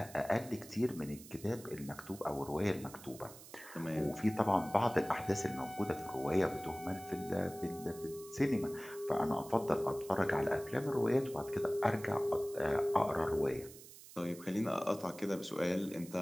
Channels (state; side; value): noise; right; hiss, 17 dB below the sound